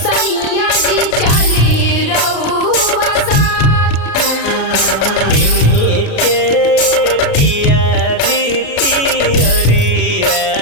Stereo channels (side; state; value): right; late; 33 ms